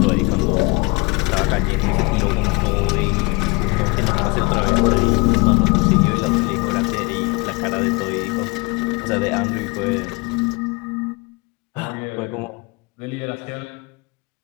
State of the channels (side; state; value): right; quieter; 26.0 dB